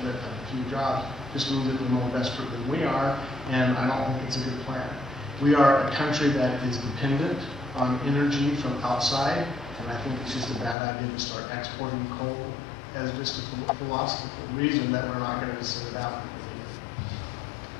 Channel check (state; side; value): drops out; right; at 10.8 s